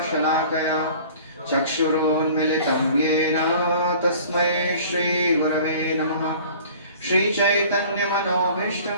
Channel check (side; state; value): both; inverted; correlation -0.47